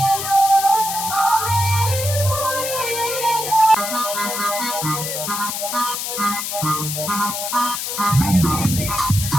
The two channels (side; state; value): left; noise; hiss, 4 dB below the sound